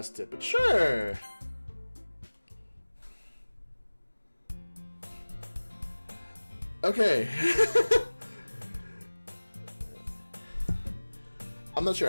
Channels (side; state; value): both; inverted; correlation -1.00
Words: it, but sure. Okay. I'm not